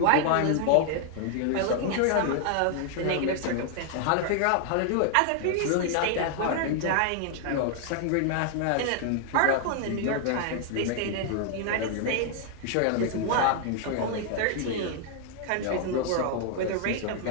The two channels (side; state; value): both; different; correlation 0.00